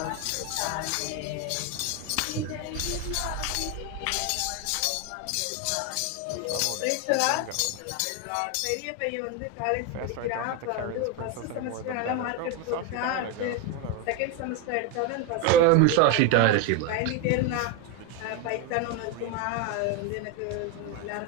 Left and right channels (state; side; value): different; both; correlation 0.02